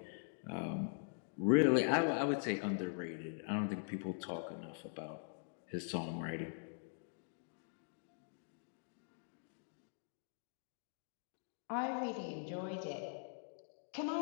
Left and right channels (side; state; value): right; silent; digital silence